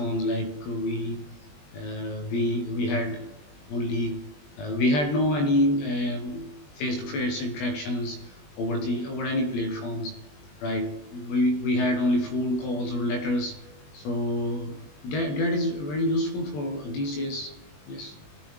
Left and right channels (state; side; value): late; right; 20 ms